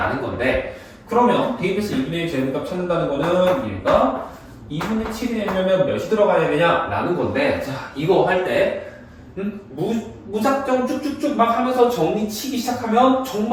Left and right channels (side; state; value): both; identical; correlation 1.00